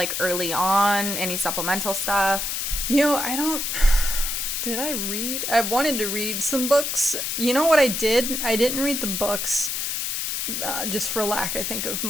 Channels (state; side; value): noise; left; hiss, 1 dB below the sound